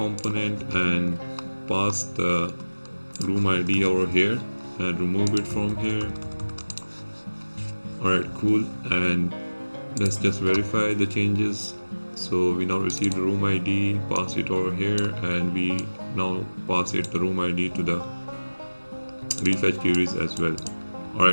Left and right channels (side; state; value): both; inverted; correlation -1.00